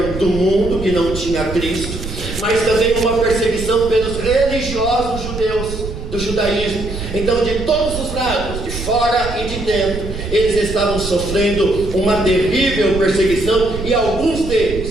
do mundo, que não tinha Cristo, mas também uma perseguição pelos religiosos judeus do judaísmo. Então, de todos os lados, de fora e de dentro, eles estavam sofrendo uma terrível perseguição, e alguns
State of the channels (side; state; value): right; noise; rumble, 8 dB below the sound